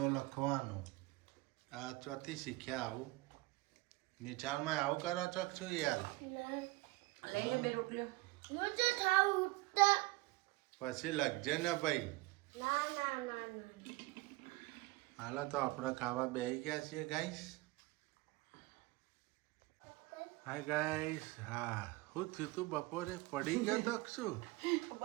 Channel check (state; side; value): quieter; left; 21.8 dB